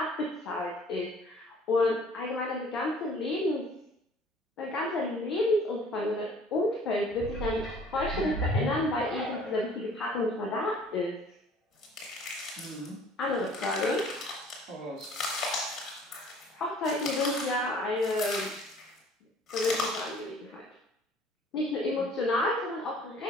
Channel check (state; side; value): normal; both; correlation 0.53